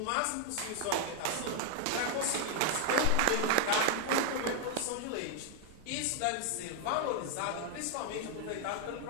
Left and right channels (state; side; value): different; both; correlation 0.00